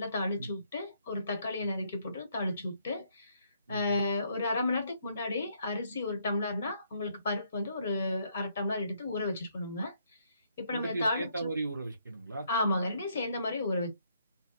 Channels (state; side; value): inverted; both; correlation -0.71